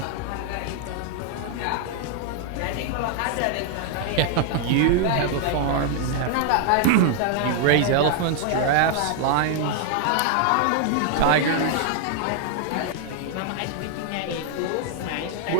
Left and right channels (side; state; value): both; different; correlation 0.00